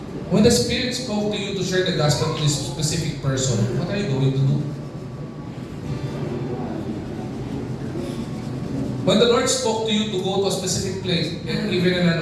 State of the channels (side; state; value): both; identical; correlation 1.00